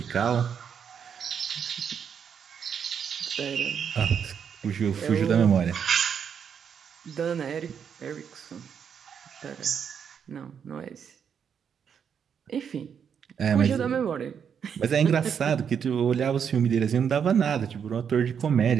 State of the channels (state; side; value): quieter; left; 7.5 dB